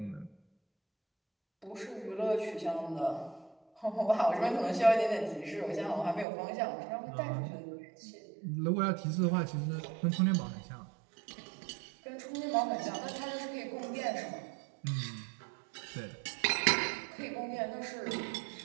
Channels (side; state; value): left; drops out; at 6.2 s